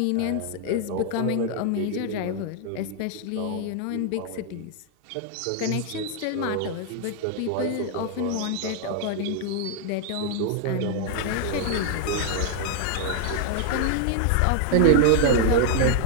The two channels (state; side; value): different; both; correlation 0.00